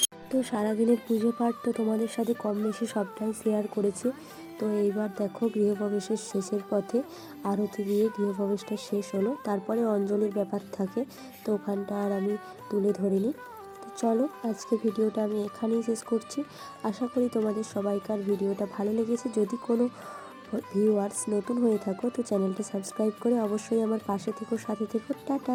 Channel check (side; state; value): both; identical; correlation 1.00